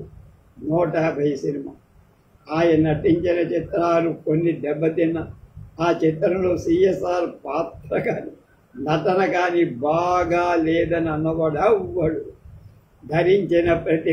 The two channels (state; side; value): identical; both; correlation 1.00